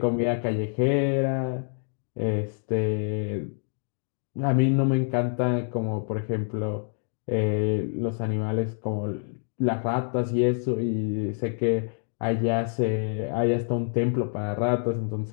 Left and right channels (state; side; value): silent; right; 60 dB below the other